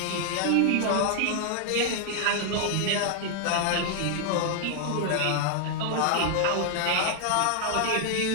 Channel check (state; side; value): different; both; correlation 0.00